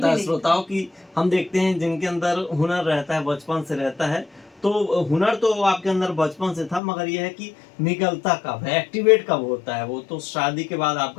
है नहीं था। श्रोताओं की। हम देखते हैं जिनके अंदर हुनर रहता है, बचपन से रहता है। तो हुनर तो आपके अंदर बचपन से था, मगर यह है कि निकलता कब है, एक्टिवेट कब होता है, वो तो शादी के बाद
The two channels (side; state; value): right; drops out; at 6.8 s